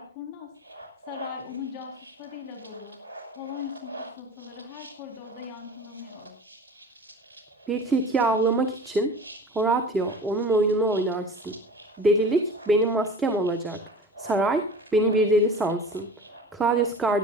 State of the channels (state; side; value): normal; both; correlation 0.38